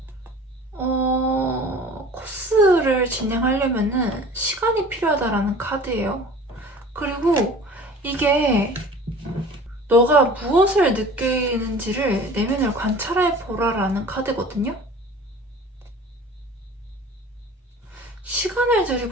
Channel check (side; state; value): both; normal; correlation 0.43